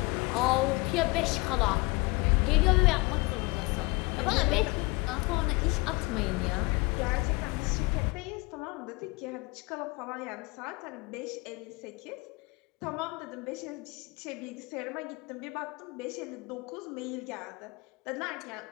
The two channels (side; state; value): right; quieter; 26.0 dB